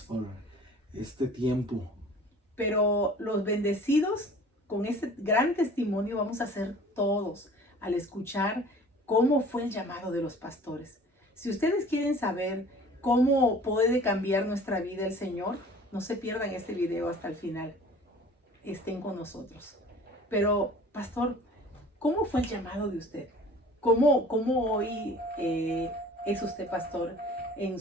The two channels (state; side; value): normal; both; correlation 0.47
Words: por este tiempo. Pero los bendecidos con este gran testimonio vamos a ser todos al escuchar cómo fue el llamado de los pastores. Si ustedes quieren saber cómo puede cambiar nuestra vida el Señor, no se pierdan este video hasta el final. Estén con nosotros. Pero, pastor, ¿cómo fue el llamado de usted? ¿Cómo hoy es usted pastor en